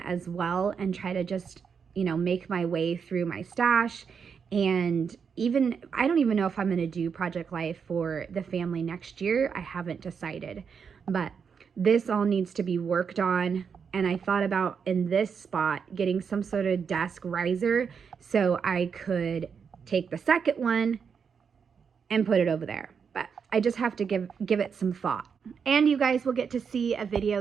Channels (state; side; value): quieter; left; 6.4 dB